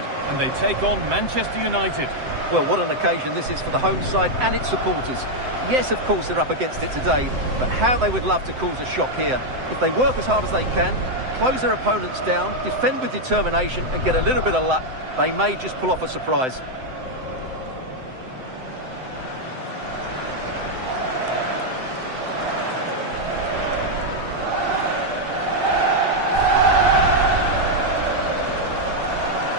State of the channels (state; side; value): late; left; 7.8 ms